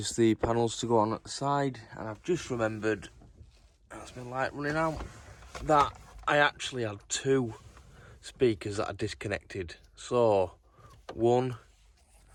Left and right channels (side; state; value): both; identical; correlation 1.00